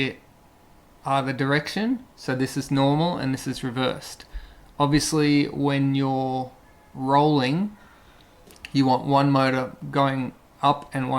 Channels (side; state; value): both; identical; correlation 1.00